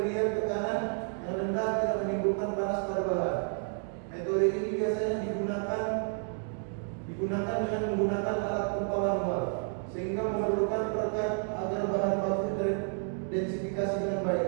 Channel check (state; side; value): silent; left; 57 dB below the other